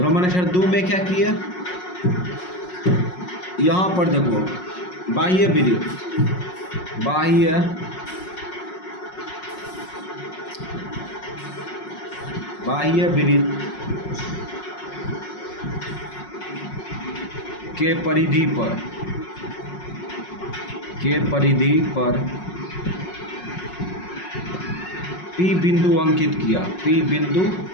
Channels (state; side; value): late; right; 5.5 ms